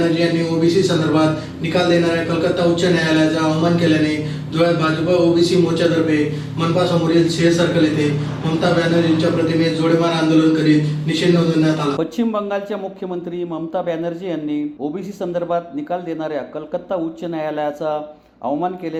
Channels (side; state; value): both; identical; correlation 1.00